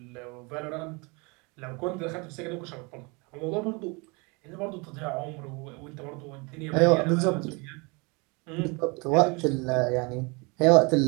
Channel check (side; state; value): left; quieter; 29.3 dB